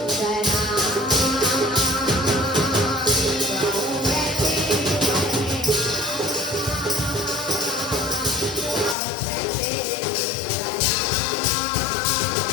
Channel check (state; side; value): drops out; right; at 9.0 s